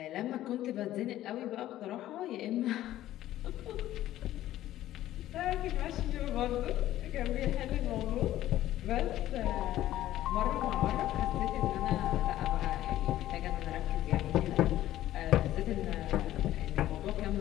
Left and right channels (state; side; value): quieter; right; 13.8 dB